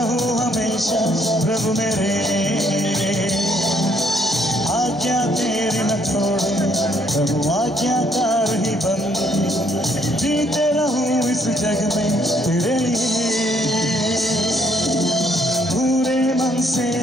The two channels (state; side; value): normal; both; correlation 0.68